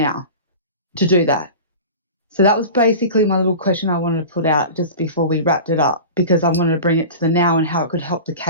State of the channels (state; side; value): inverted; both; correlation -0.33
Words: to do that? So that was basically my little question I wanted to put out just before we wrapped it up, because I wanted to bring it to the now and how it could help the